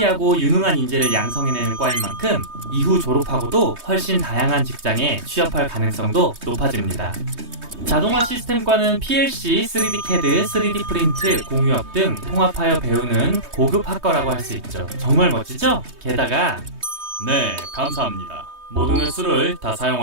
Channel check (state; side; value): late; left; 3.2 ms